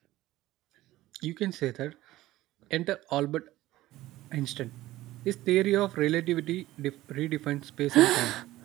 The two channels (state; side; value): quieter; left; 16.3 dB